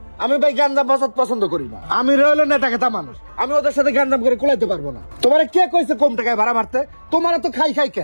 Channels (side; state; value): both; inverted; correlation -1.00